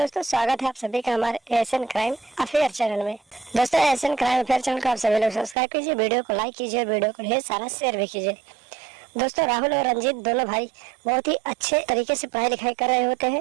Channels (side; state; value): left; drops out; at 5.6 s